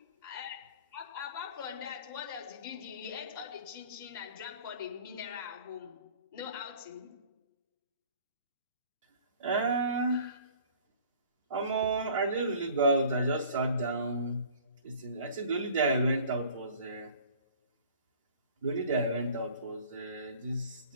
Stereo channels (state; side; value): inverted; both; correlation -0.49